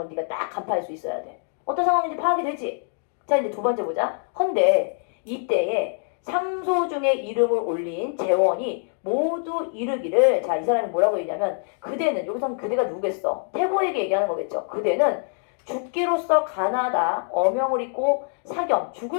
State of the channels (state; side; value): silent; right; 58 dB below the other